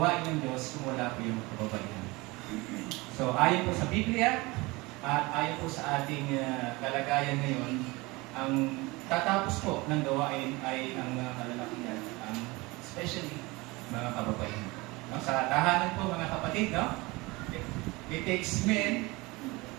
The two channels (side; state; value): left; quieter; 23.4 dB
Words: ng Diyos kung wala po yung kababaihan. So ayon po sa Biblia at ayon po sa ating kalagayan ngayon, ang tatapos po ng gawain ay ang mga kalalakihan, especially mga kababaihan. No? Sa tahanan po, mga kapatid, no? It takes men